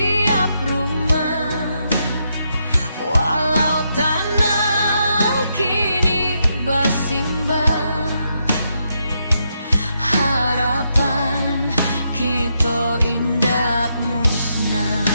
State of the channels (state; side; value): inverted; both; correlation -0.80